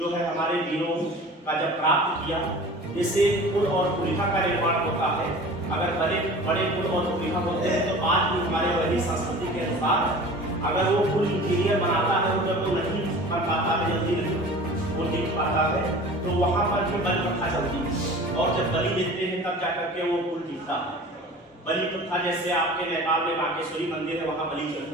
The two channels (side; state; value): both; normal; correlation 0.40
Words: है हमारे वीरों का जब प्राप्त किया। जैसे कुल और कुलीफा का निर्माण होता है, अगर बड़े कुल और कुलीफा होते हैं तो आज भी हमारे वही संस्कृति के अनुसार अगर वो कुल इंजीनियर बनाता है, जब वो नहीं कर पाता है, जल्दी नहीं वो जीत पाता है, तो वहाँ पर भी बलि प्रथा चलती है और जब बलि देते हैं तब जाकर के वो कुल जीतता है। बलि प्रथा जैसे आपके नेपाल में बागेश्वरी मंदिर है, वहाँ बलि